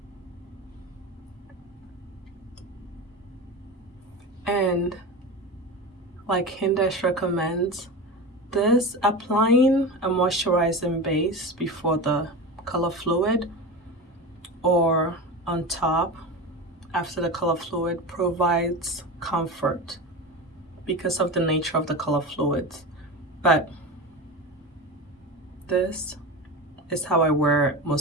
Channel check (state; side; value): normal; both; correlation 0.25